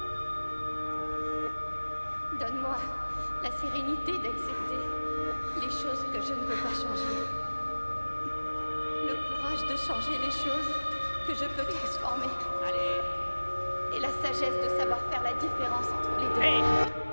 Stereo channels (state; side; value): inverted; both; correlation -1.00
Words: Donne-moi la sérénité d'accepter les choses que je ne peux pas changer. Le courage de changer les choses que je peux transformer. Allez! Et la sagesse de savoir faire la différence entre les deux. Hé!